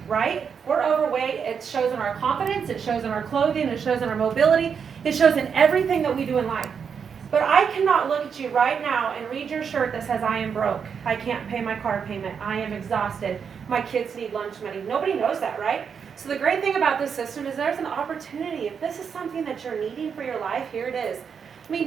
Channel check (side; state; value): left; quieter; 6.7 dB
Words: right? We're overweight, it shows in our confidence, it shows in our clothing, it shows in our mobility, it shows in everything that we do in life. But I cannot look at you right now and read your shirt that says, I am broke, I can't pay my car payment, I am exhausted, my kids need lunch money. Nobody knows that, right? So the great thing about this system is there's an opportunity. If this is something that you're needing for your life, here it is. I